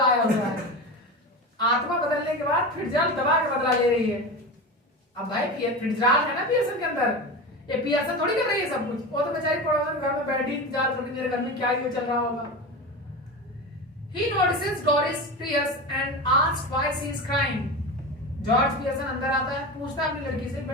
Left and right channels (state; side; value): normal; both; correlation 0.26